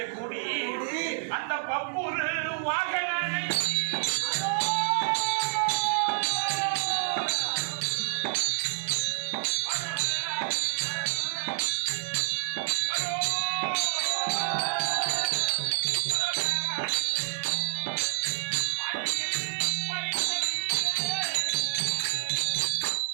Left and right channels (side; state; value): left; silent; 59 dB below the other